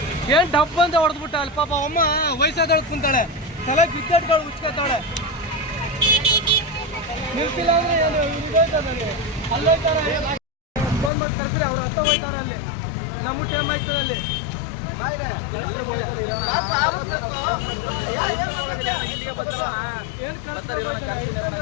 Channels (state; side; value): drops out; right; at 11.1 s